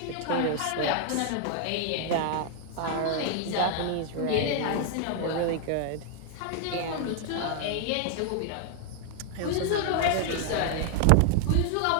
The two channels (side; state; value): both; different; correlation 0.00